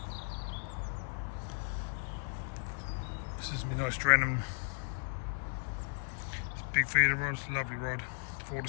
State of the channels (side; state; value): right; silent; 54 dB below the other